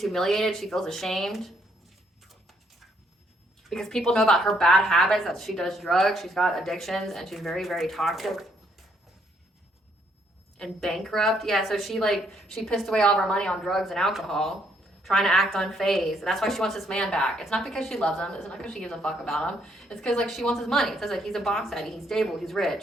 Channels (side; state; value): both; normal; correlation 0.71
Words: humiliated. She feels ashamed. Because people know about her bad habits, that she does drugs, she's got addictions, and she's very, very toxic. And bankrupt. Yeah, so she pissed away all of her money on drugs and alcohol, trying to act unfazed. And that's why she wants this man back. It's not because she loves him. It's not because she gives a fuck about him. It's because she wants his money. It says he's a boss daddy. He's stable. He's